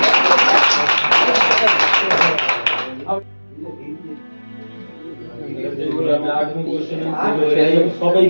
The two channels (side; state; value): both; inverted; correlation -1.00